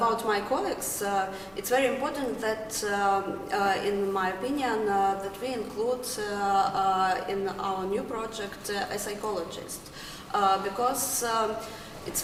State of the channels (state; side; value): identical; both; correlation 1.00